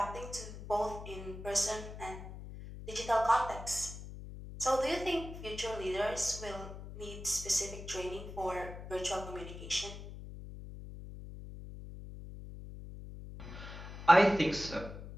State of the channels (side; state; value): left; noise; hum, 11 dB below the sound